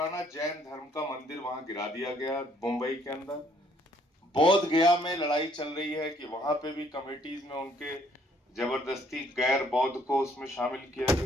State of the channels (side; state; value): both; normal; correlation 0.64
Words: जैन धर्म का मंदिर वहां गिरा दिया गया मुंबई के अंदर। बोध गया में लड़ाई चल रही है कि वहां पे भी कमेटीज में उनके जबरदस्ती गैर बौद्ध को उसमें शामिल किया